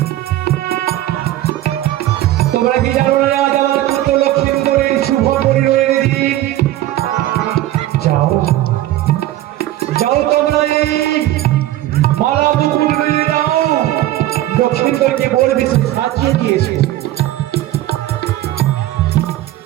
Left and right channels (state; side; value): quieter; left; 14.6 dB